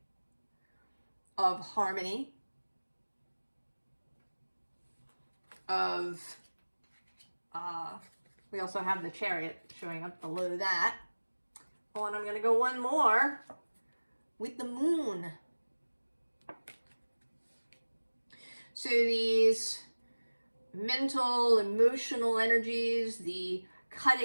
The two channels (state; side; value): inverted; both; correlation -1.00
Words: of harmony, of, we also have the Chariot showing up below that. Oh, and I'm going to go one more with the Moon. So these mental, emotional energies, the